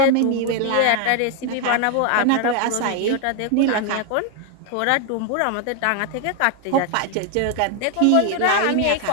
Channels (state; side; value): different; both; correlation 0.00